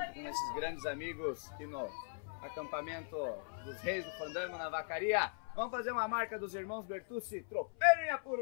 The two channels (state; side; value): silent; right; 51 dB below the other